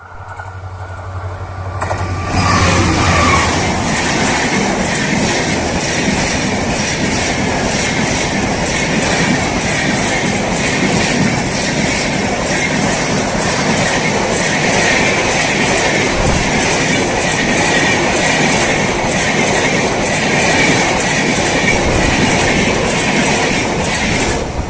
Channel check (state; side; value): identical; both; correlation 1.00